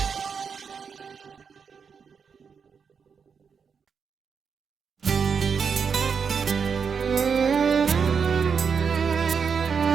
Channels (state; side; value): quieter; left; 6.2 dB